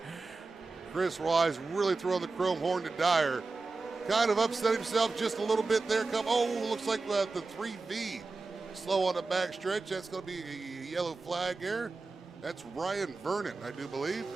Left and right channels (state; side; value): quieter; left; 3.8 dB